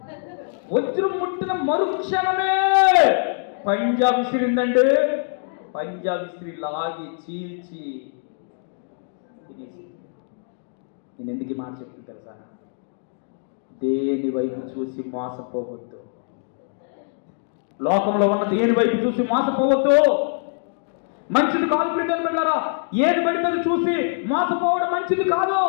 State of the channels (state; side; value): silent; right; 62 dB below the other